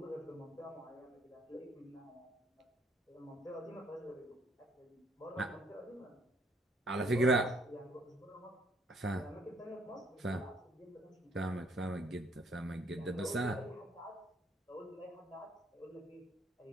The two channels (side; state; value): both; normal; correlation 0.66